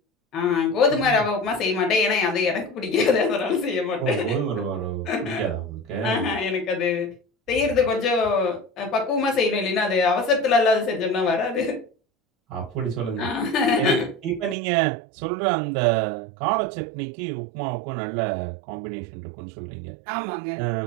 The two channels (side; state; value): left; drops out; at 14.6 s